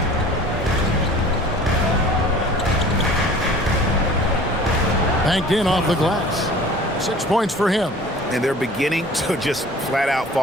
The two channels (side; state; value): both; normal; correlation 0.45